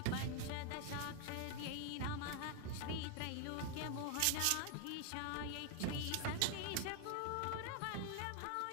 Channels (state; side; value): different; both; correlation 0.00